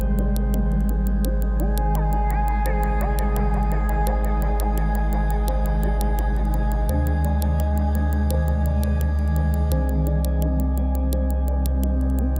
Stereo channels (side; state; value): both; identical; correlation 1.00